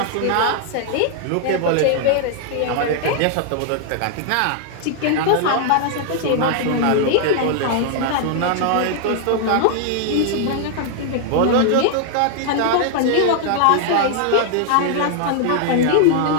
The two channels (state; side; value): different; both; correlation 0.00